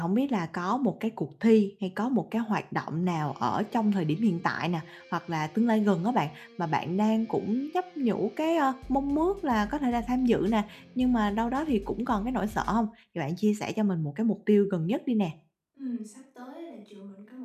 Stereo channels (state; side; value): identical; both; correlation 1.00